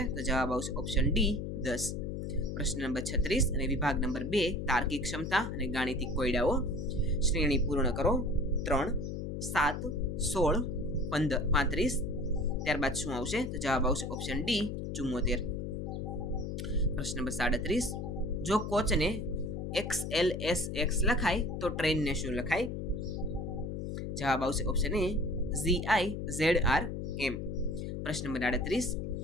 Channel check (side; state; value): left; noise; hum, 4 dB below the sound